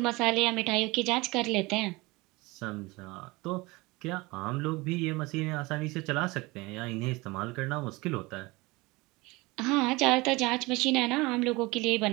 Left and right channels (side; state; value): left; quieter; 23.2 dB